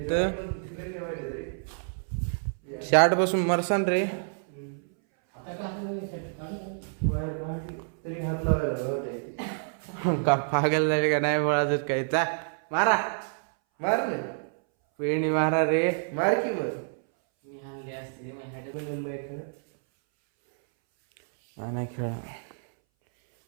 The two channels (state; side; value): silent; left; 59 dB below the other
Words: शार्ट बसून मरसान रे. का पागल झाले का नाही बोलायचं काय. चा मारा मारले पेणी मारा रे. मार की बस. नाही खेळा,